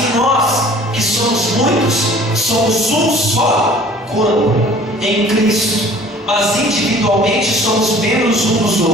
nós, que somos muitos, somos um só corpo em Cristo, mas individualmente somos membros uns dos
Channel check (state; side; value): normal; both; correlation 0.49